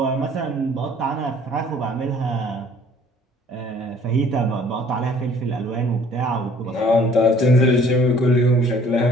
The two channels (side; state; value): both; normal; correlation 0.56